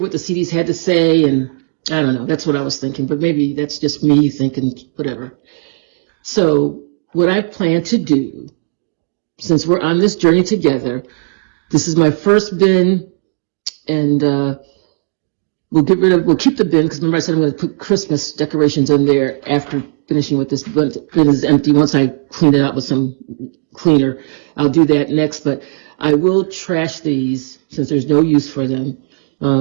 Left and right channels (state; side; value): silent; left; digital silence